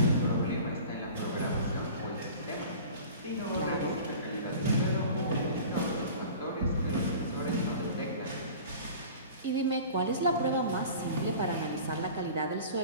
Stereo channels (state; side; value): inverted; both; correlation -0.41